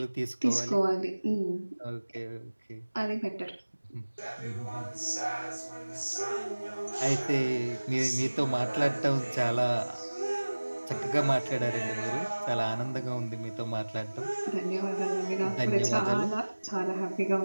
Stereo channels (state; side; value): inverted; both; correlation -1.00